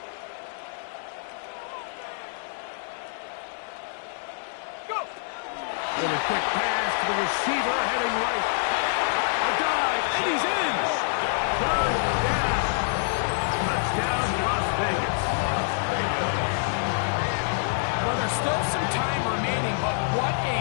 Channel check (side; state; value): right; silent; digital silence